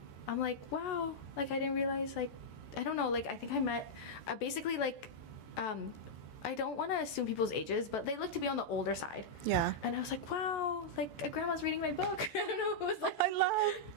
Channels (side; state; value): right; late; 14 ms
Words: I'm like, wow, like I didn't realize, like, I don't know, like I think I met basically like I don't want to assume people's ages, but they look to be on the older side. Yeah. And I was like, wow, like a grandma's reading my book. I don't know. It was like,